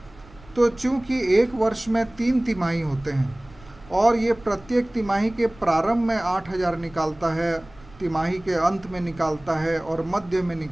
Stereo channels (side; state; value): right; noise; rumble, 23 dB below the sound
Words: तो चूंकि एक वर्ष में 3 तिमाही होते हैं और ये प्रत्येक तिमाही के प्रारंभ में 8,000 निकालता है, तिमाही के अंत में निकालता है और मध्य में